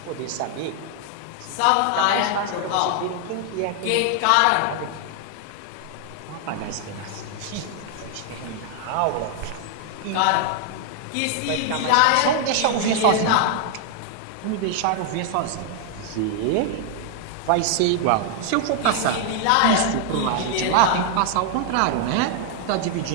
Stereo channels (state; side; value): different; both; correlation 0.00